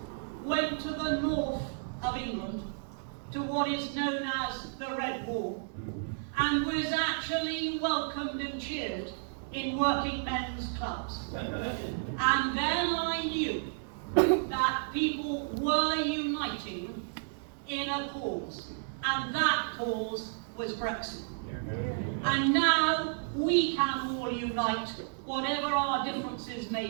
went to the north of England, to what is known as the Red Wall, and was actually welcomed and cheered in working men's clubs. And then I knew that people were uniting in a cause, and that cause was Brexit. And now we can all unite, whatever our differences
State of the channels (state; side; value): silent; left; digital silence